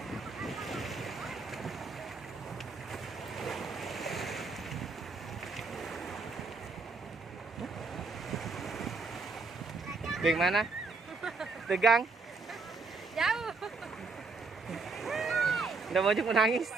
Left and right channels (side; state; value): left; quieter; 3.9 dB